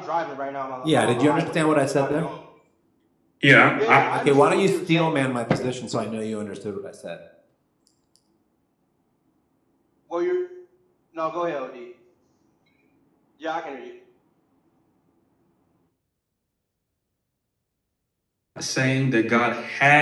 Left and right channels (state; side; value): identical; both; correlation 1.00